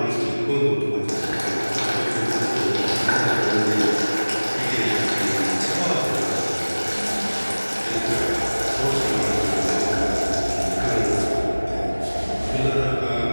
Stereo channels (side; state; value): both; inverted; correlation -1.00